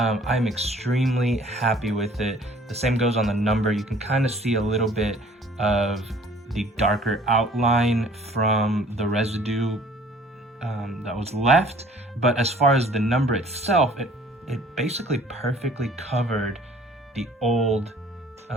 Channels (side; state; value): both; normal; correlation 0.54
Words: extremely happy with it. The same goes on the number. You can kind of see a little bit of the darker outline from the residue that was left. But as far as the number itself, it basically perfectly covered the old